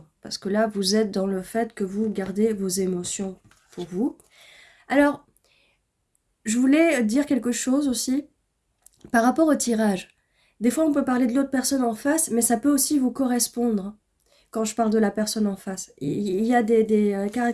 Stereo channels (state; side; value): identical; both; correlation 1.00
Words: Parce que là, vous êtes dans le fait que vous gardez vos émotions pour vous. Alors, je voulais dire quelque chose aussi par rapport au tirage. Des fois, on peut parler de l'autre personne en face, mais ça peut aussi vous correspondre quand je parle de la personne en face. Il y a des